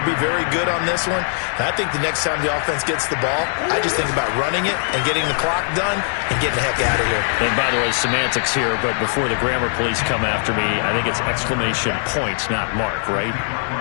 be very good on this one. And I think the next time the offense gets the ball, I just think about running it and getting the clock done and getting the heck out of here. And by the way, semantics here, but before the grammar police come after me, I think it's exclamation points, not mark, right?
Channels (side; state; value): right; silent; 66 dB below the other